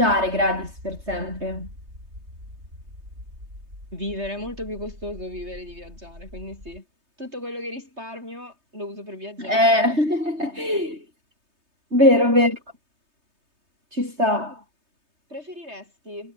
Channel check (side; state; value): left; late; 3.2 ms